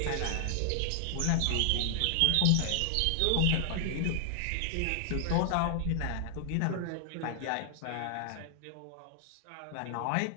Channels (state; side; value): different; both; correlation 0.00